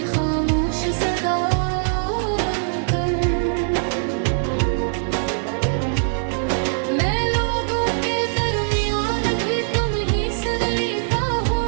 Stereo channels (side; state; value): left; silent; 56 dB below the other